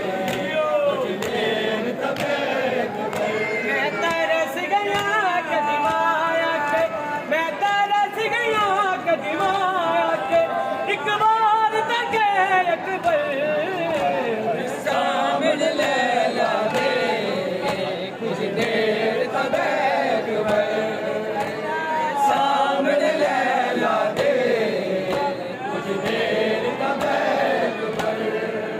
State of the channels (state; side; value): identical; both; correlation 1.00